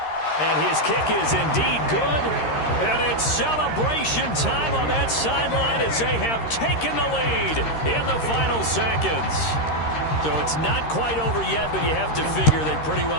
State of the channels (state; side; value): late; right; 13 ms